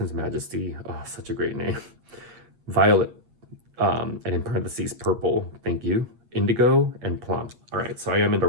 majesty. Oh, such a great name. Violet, and in parentheses purple. Thank you. Indigo and plum. All right, so I am in the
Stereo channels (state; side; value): late; left; 8.5 ms